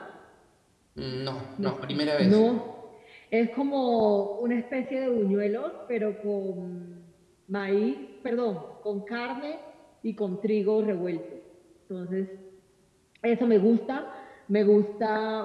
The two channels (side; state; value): both; identical; correlation 1.00